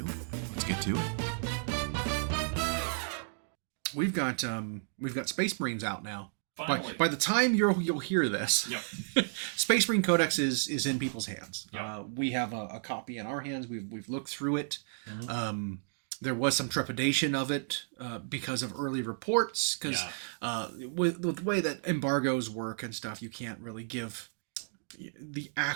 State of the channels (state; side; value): silent; left; digital silence